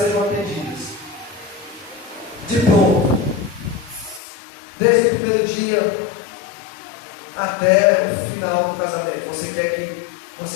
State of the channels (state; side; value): drops out; right; at 4.2 s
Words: atendidas. De pronto. Desde o primeiro dia até o final do casamento. Você quer que